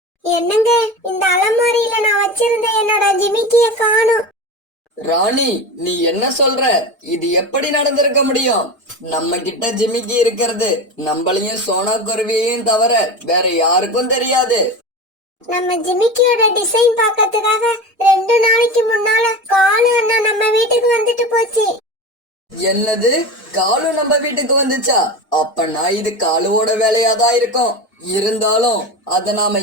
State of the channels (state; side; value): normal; both; correlation 0.26